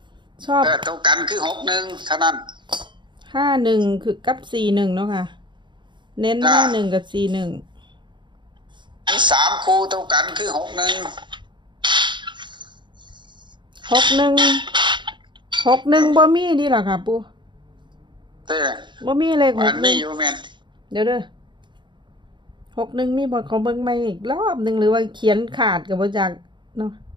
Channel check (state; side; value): late; left; 0.23 ms